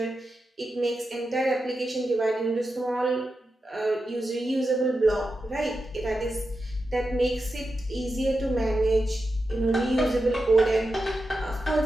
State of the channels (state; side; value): normal; both; correlation 0.90